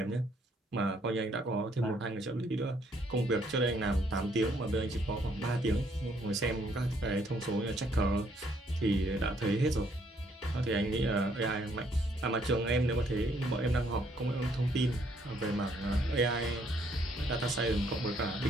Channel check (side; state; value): both; normal; correlation 0.68